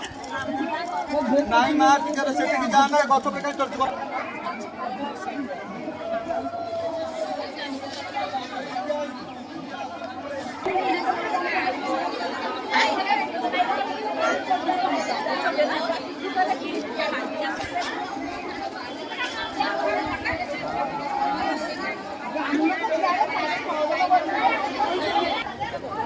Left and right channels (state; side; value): identical; both; correlation 1.00